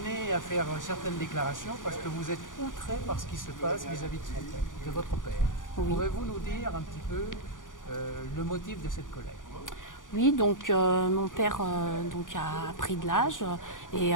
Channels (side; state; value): right; late; 0.88 ms